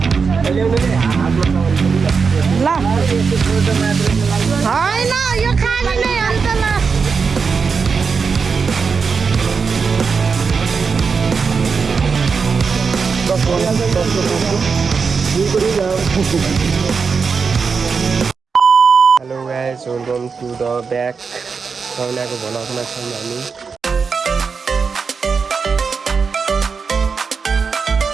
guys, welcome to the back. Saunako भ्लगमा छौँ हामी।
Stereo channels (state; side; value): quieter; left; 5.4 dB